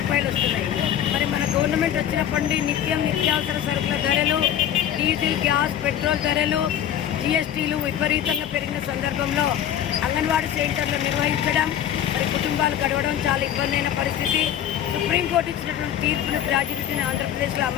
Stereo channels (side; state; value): right; quieter; 10.3 dB